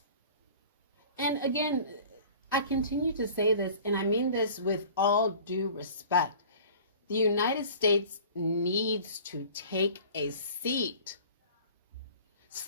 And again, I continue to say this, and I mean this with all due respect. The United States needs to take a seat.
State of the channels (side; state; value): both; inverted; correlation -0.44